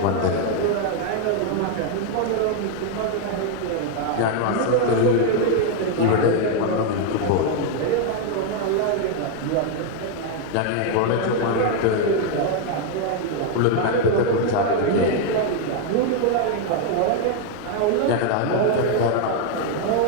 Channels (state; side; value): different; both; correlation 0.00